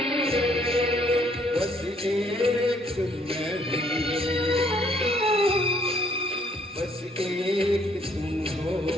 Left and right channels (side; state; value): both; normal; correlation 0.65